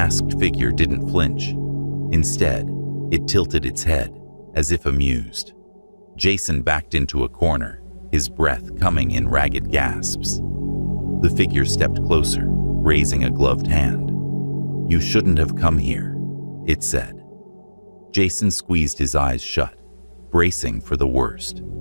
figure didn't flinch. Instead, it tilted its head, as if amused. Jason backed into a corner, his breath coming in ragged gasps. The figure stepped closer, raising a gloved hand. "You shouldn't have come here," it said. Jason squeezed his eyes shut, bracing for the worst.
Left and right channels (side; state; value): both; inverted; correlation -1.00